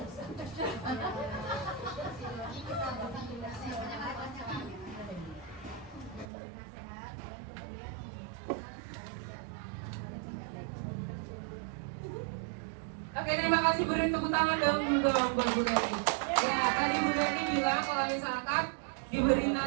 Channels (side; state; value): left; drops out; at 6.2 s